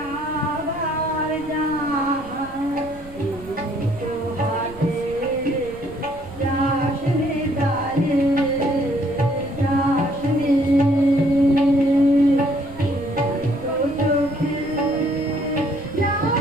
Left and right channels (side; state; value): right; noise; rumble, 20 dB below the sound